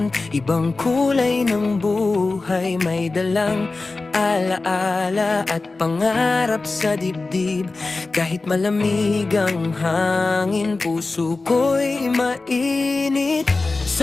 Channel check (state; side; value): quieter; right; 3.5 dB